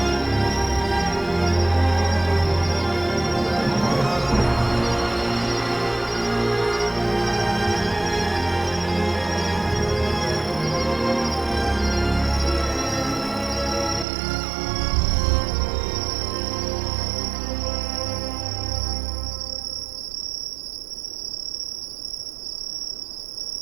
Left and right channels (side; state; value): left; drops out; at 14.1 s